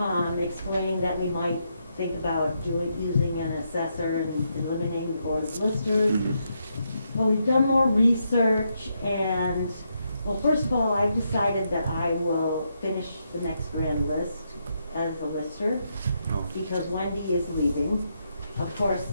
explaining that we might think about using an assessor and eliminating the board of listers. Mhm. Well, we've done more research and, well, first of all, I decided that I will finish the next grand list as a lister Oh, because Wendy is leaving. Of course,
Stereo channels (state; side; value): inverted; both; correlation -0.80